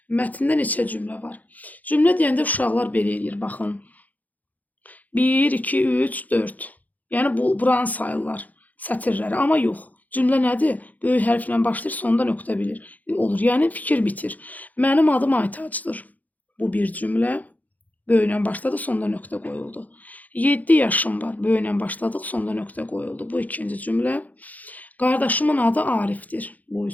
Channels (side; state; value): right; late; 0.079 ms